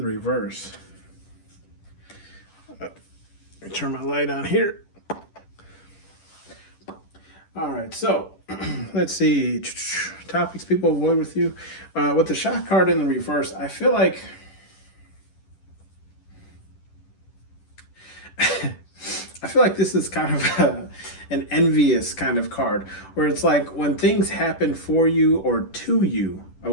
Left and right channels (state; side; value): late; right; 10 ms